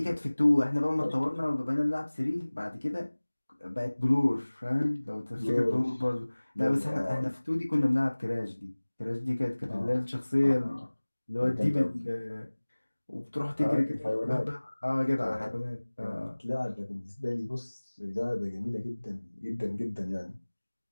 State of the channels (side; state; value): both; inverted; correlation -1.00